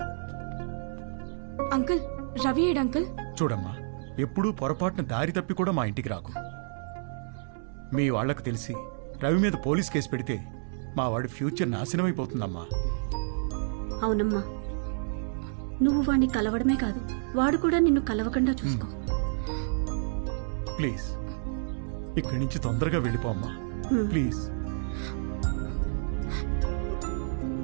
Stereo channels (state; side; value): silent; left; 58 dB below the other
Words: అంకుల్ రవి ఏడు అంకుల్. చూడమ్మా, ఎప్పుడూ పొరపాటున దారి తప్పి కూడా మా ఇంటికి రాకు. మీ వాళ్లకు తెలిసి రవి మీద పోలీస్ కేసు పెడితే మా వాడి ఫ్యూచర్ నాశనమైపోతుందమ్మా. అవునమ్మా, నువ్వు వాడిని కలవడమే కాదు, వాడు కూడా నిన్ను కలవకుండా చూసుకో. ప్లీజ్ ఇక్కడి నుంచి తొందరగా వెళ్ళిపోమ్మా, ప్లీజ్.